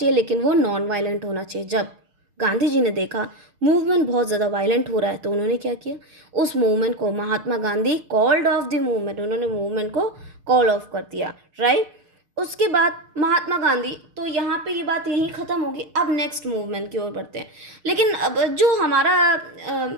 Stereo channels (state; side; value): late; left; 6.6 ms